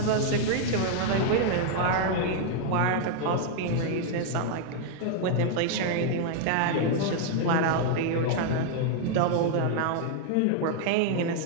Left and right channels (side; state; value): both; different; correlation 0.00